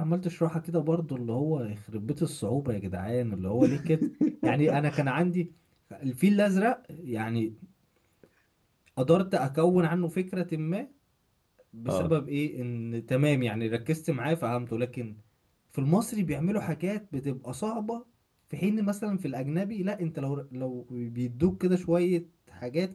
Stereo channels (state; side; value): identical; both; correlation 1.00